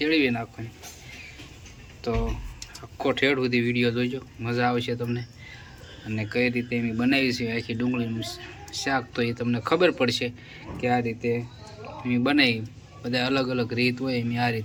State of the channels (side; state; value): both; identical; correlation 1.00